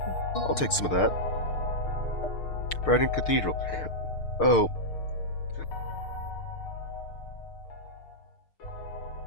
I'll take some of that. Brighton Cathedral. Oh.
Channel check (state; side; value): late; right; 6.6 ms